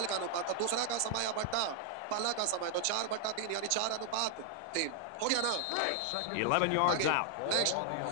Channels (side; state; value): both; different; correlation 0.00